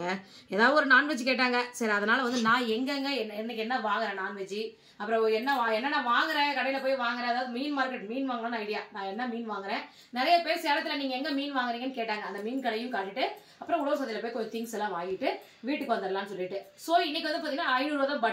ஏதாவது ஒரு நான்வெஜ் கேட்டாங்க. சரி, அதனால வந்து நான் எங்கெங்க என்னைக்கு என்ன வாங்குறேன் நான்வெஜ், அப்புறம் என்னென்ன வாங்குறேன், கடையில் போய் வாங்குறேன். அதாவது மீன் மார்க்கெட் மீன் வாங்கணும்னு ஐடியா. நான் என்ன மீன் வாங்குறேன், நிறைய பேர் சேலத்தில் நீங்கள் எங்கே மீன் வாங்குறீங்கன்னு கேட்டாங்க. அந்த மீன் கடையும் காட்டிட்டு அப்புறம் உழவு சந்தையில் போய் கொஞ்சம் திங்ஸ் எல்லாம் வாங்கிட்டு வீட்டுக்கு வந்துடலாம்னு சொல்லிட்டு. ஸோ இன்னைக்கு வந்து பார்த்தீங்கன்னா 500 ரூபா தான்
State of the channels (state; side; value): identical; both; correlation 1.00